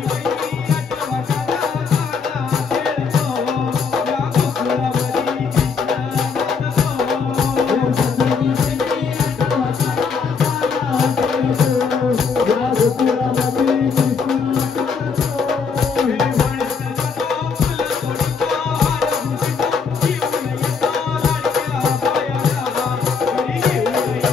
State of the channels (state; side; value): quieter; right; 5.6 dB